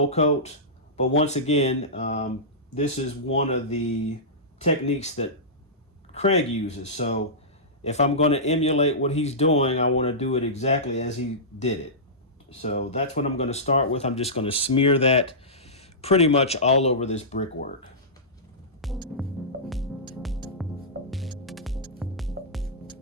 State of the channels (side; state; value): both; normal; correlation -0.17